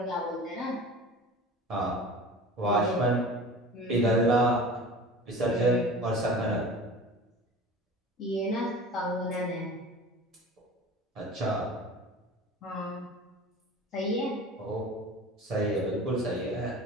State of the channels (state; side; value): normal; both; correlation 0.38